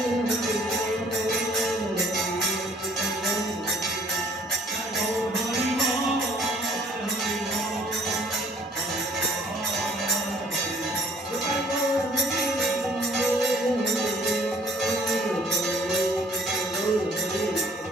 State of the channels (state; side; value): normal; both; correlation 0.58